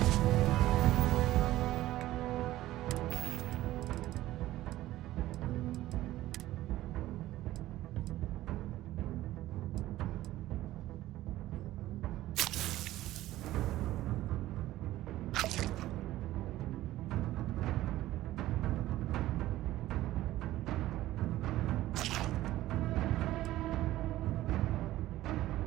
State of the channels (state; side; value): quieter; left; 15.4 dB